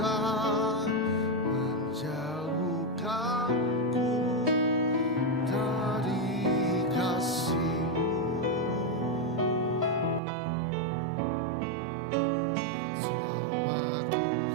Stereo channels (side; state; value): left; drops out; at 10.2 s